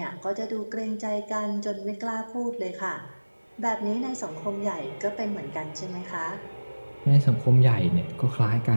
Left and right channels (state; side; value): inverted; both; correlation -1.00